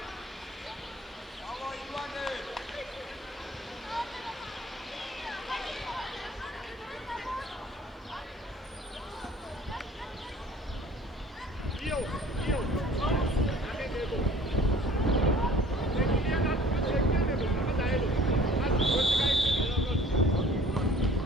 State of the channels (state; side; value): normal; both; correlation 0.51